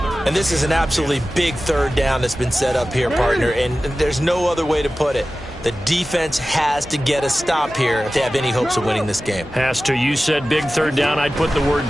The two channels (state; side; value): normal; both; correlation 0.95